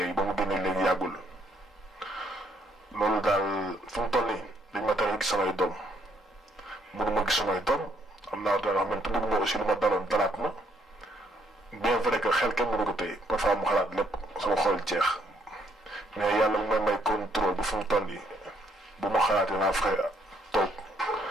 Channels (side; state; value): both; normal; correlation 0.69